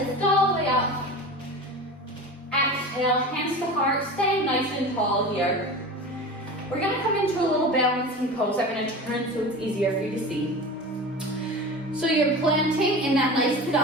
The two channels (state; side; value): normal; both; correlation 0.32